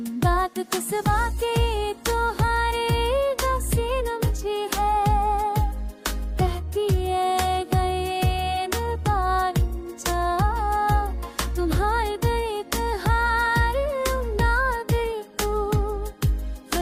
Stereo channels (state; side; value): identical; both; correlation 1.00